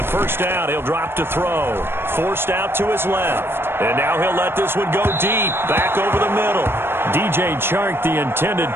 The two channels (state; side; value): late; left; 0.11 ms